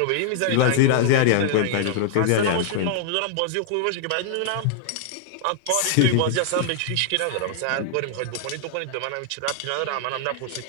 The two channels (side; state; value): both; different; correlation -0.01